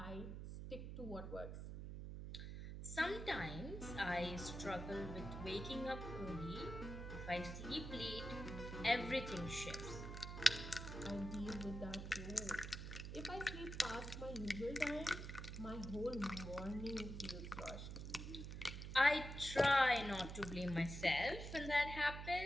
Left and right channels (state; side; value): noise; right; hum, 7 dB below the sound